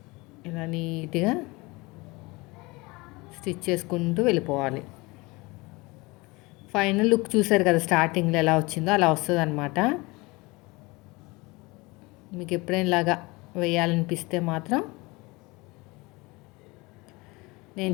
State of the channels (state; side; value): quieter; right; 24.0 dB